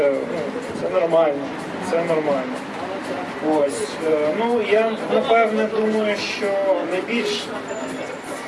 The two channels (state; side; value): identical; both; correlation 1.00